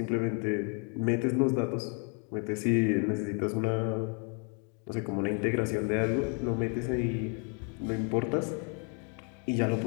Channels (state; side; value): quieter; right; 38.1 dB